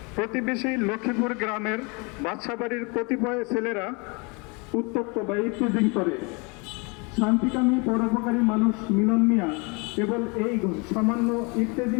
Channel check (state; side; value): quieter; right; 30.3 dB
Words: প্রতিবেশী লক্ষ্মীপুর গ্রামের বাদশাবাড়ির কতিপয় ছেলেরা উত্তপ্ত বা ইত্তেজিং করে। শান্তিকামী পরোপকারী মানুষ মিলন মিয়া কেবল এই সামান্য